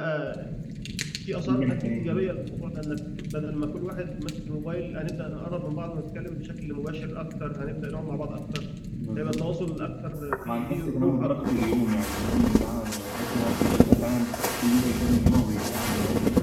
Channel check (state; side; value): identical; both; correlation 1.00